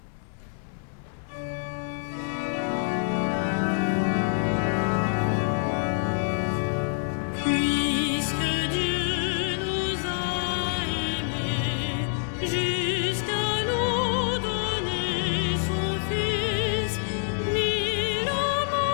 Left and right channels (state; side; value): silent; right; 60 dB below the other